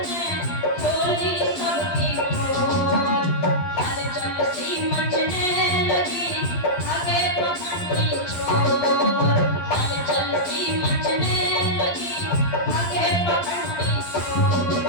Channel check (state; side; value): late; right; 12 ms